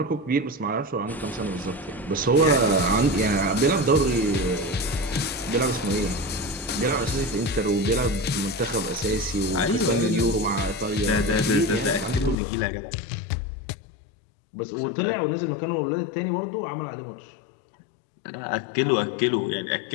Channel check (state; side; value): drops out; right; at 12.4 s